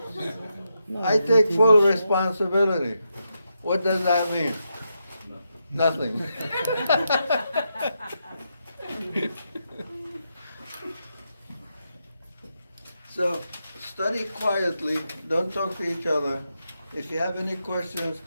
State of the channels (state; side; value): inverted; both; correlation -0.84